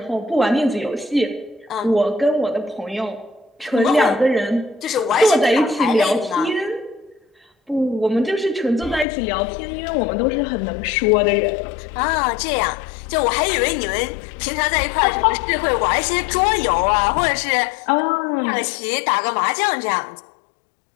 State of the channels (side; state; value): right; drops out; at 9.1 s